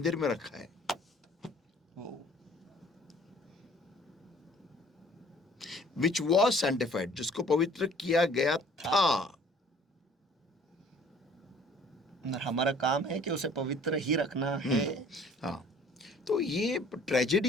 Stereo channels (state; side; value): normal; both; correlation 0.54